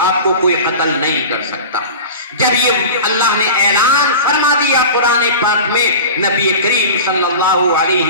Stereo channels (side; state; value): both; inverted; correlation -0.33